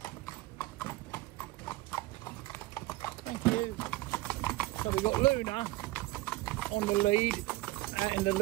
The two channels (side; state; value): left; quieter; 18.9 dB